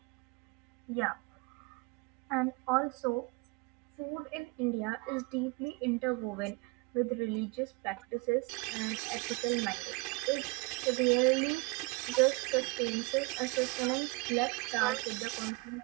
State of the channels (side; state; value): left; quieter; 26.7 dB